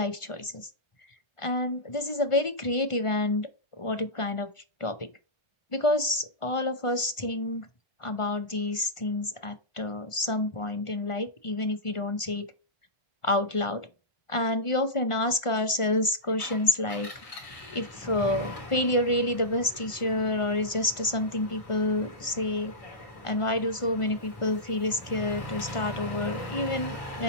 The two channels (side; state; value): right; late; 1.4 ms